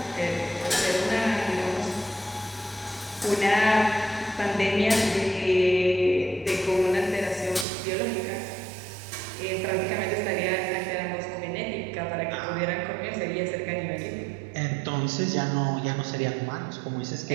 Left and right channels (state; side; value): drops out; left; at 7.7 s